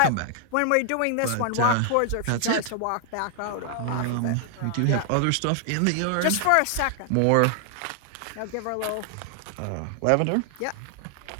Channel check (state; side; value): different; both; correlation 0.00